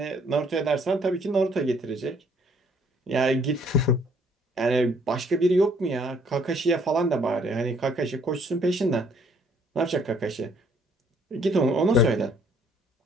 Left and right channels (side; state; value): both; normal; correlation 0.63